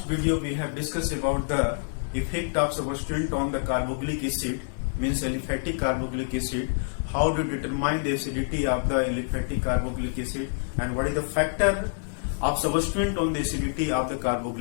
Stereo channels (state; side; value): silent; right; 60 dB below the other